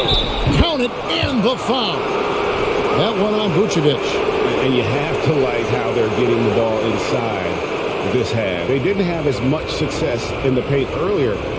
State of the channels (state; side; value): identical; both; correlation 1.00